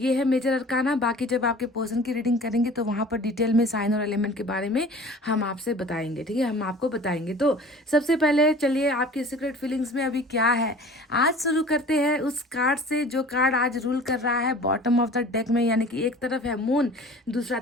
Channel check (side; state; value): both; normal; correlation 0.44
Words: है मेजर अरकाना। बाकी जब आपके पर्सन की रीडिंग करेंगे तो वहाँ पर डिटेल में साइन और एलिमेंट के बारे में हम आपसे बताएंगे, ठीक है, हम आपको बताएंगे। तो सबसे पहले चलिए आपकी सीक्रेट फीलिंग्स में अभी क्या है आज शुरू करते हैं उस कार्ड से जो कार्ड आज रूल कर रहा है बॉटम ऑफ द डेक में, यानी कि एक तरफ है मून, दूसरा